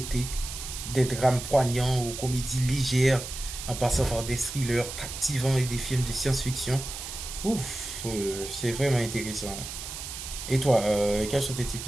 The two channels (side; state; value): right; noise; hiss, 8 dB below the sound